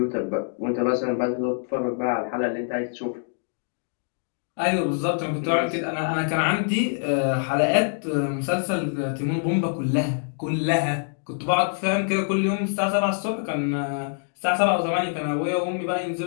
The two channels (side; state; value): right; silent; digital silence